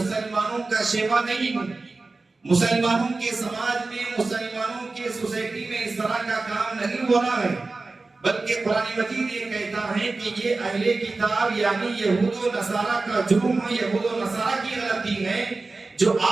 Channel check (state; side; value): quieter; left; 3.6 dB